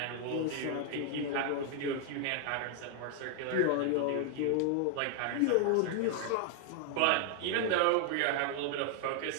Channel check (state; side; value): different; both; correlation 0.00